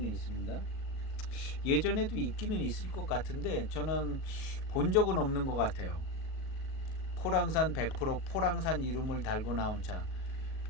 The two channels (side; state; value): right; late; 37 ms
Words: 있습니다. 예전에도 있기는 있을 것 같은데 저는 본 적은 없는 것 같아요. 포랑산 100% 포랑산 이름을 달고 나온 차.